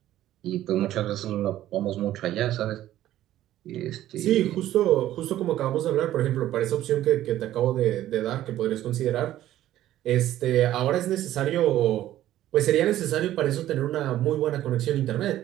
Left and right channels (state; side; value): quieter; left; 13.4 dB